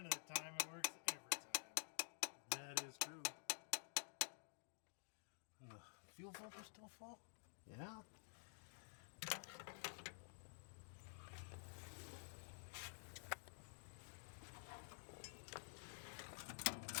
of the time it works every time. That is true. And the fuel filter's still full? Yeah.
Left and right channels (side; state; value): right; silent; digital silence